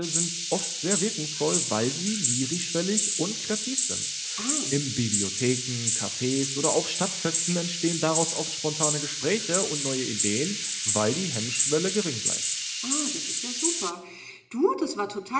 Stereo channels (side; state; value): both; identical; correlation 1.00